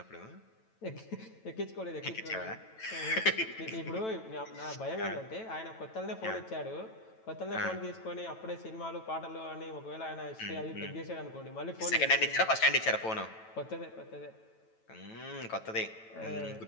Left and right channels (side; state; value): right; late; 9.1 ms